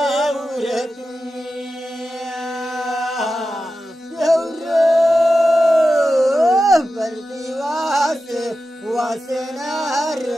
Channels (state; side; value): normal; both; correlation 0.92